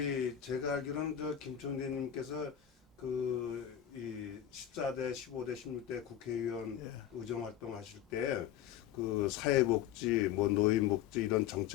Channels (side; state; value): right; quieter; 10.5 dB